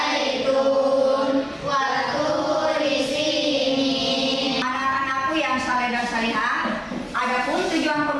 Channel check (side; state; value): both; identical; correlation 1.00